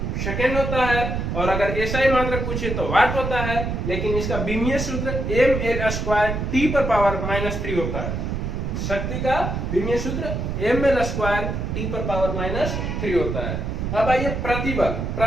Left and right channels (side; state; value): right; noise; rumble, 2 dB below the sound